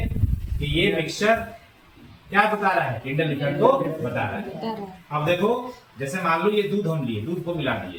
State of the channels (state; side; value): identical; both; correlation 1.00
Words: कि ये मिक्सचर क्या बता रहा है, टिंडल इफेक्ट को बता रहा है। अब देखो जैसे मान लो ये दूध हम लिए, दूध को मिला